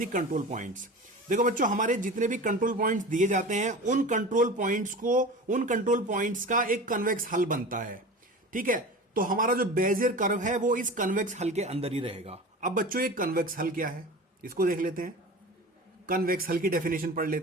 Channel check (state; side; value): normal; both; correlation 0.34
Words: कंट्रोल पॉइंट्स। देखो बच्चों हमारे जितने भी कंट्रोल पॉइंट्स दिए जाते हैं उन कंट्रोल पॉइंट्स का एक कन्वेक्स हल बनता है। ठीक है, तो हमारा जो बेजियर कर्व है वो इस कन्वेक्स हल के अंदर ही रहेगा। अब बच्चों ये कन्वेक्स हल क्या है, इसको देख लेते हैं, कन्वेक्स हल की डेफिनेशन पढ़